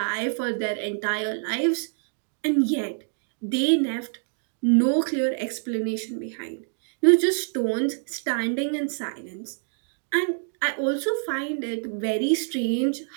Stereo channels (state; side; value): silent; left; digital silence